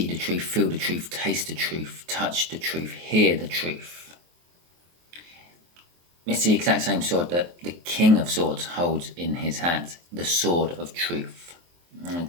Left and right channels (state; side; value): late; left; 23 ms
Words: the truth, feel the truth, taste the truth, touch the truth, hear the truth. It's the exact same sword that the King of Swords holds in his hands. The Sword of Truth.